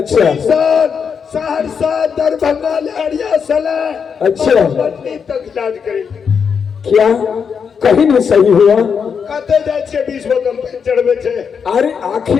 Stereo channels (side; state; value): right; quieter; 6.5 dB